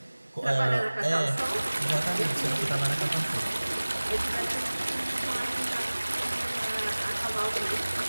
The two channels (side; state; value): both; inverted; correlation -1.00